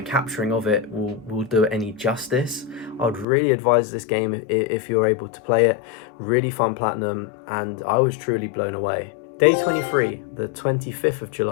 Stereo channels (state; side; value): drops out; right; at 3.2 s